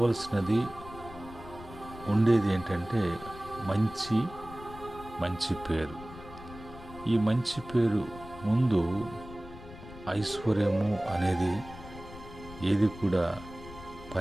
ఉండేది ఏంటంటే మంచి పేరు. ఈ మంచి పేరు ముందు ఐశ్వర్యము అనేది ఏది కూడా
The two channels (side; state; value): left; noise; rumble, 15 dB below the sound